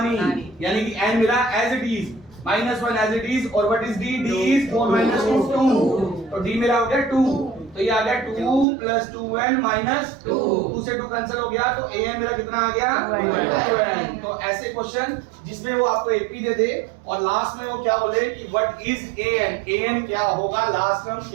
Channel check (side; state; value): left; drops out; at 8.7 s